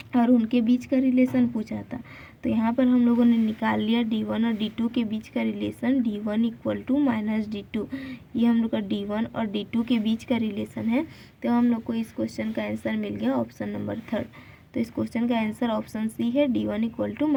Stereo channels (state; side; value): identical; both; correlation 1.00